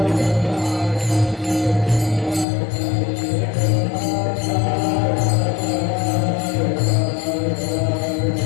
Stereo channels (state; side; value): drops out; right; at 2.5 s